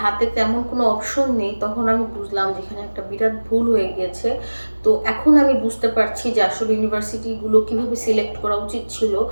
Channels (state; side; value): inverted; both; correlation -1.00